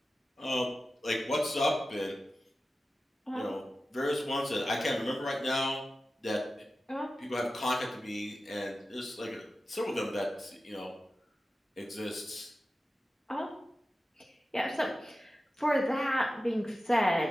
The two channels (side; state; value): both; normal; correlation 0.94